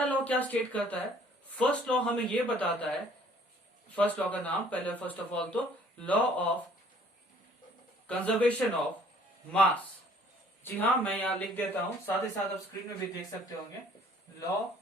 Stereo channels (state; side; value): normal; both; correlation 0.58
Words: लॉ क्या स्टेट करता है? फर्स्ट लॉ हमें ये बताता है, फर्स्ट लॉ का नाम पहले फर्स्ट ऑफ ऑल तो law of conservation of mass. जी हाँ, मैं यहां लिख देता हूं, साथ ही साथ आप स्क्रीन में भी देख सकते होंगे। Law